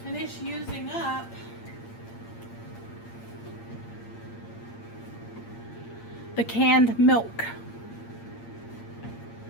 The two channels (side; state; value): right; late; 8.7 ms